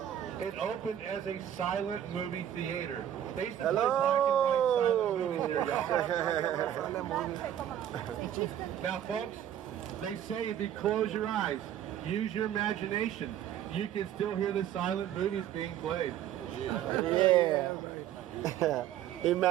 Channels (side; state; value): left; quieter; 10.8 dB